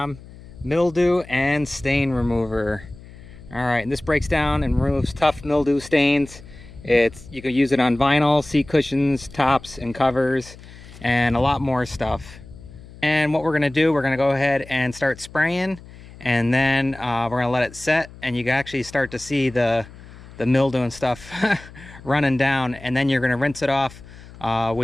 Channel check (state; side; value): noise; left; hum, 19 dB below the sound